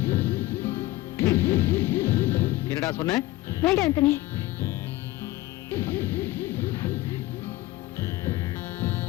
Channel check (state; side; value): quieter; right; 17.6 dB